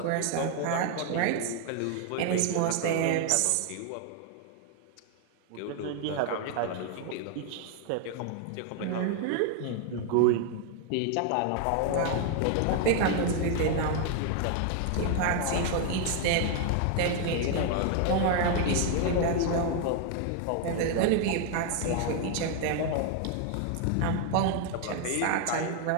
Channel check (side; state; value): both; different; correlation 0.00